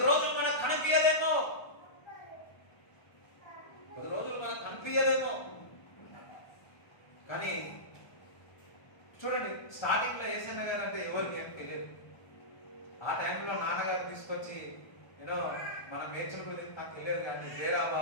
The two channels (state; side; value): late; right; 1.4 ms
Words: రోజులు మనకు కనిపించదేమో, కానీ చూడండి, స్టార్టింగ్ లో యేసన్న గారు అంటే ఎవరికి ఏం తెలియదు. ఆ టైంలో నాన్నగారు తీసుకొచ్చి మన మేడ్చల్ గురించి నాకు తెలియదు, కానీ